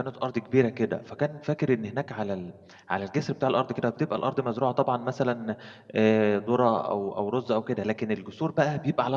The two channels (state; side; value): identical; both; correlation 1.00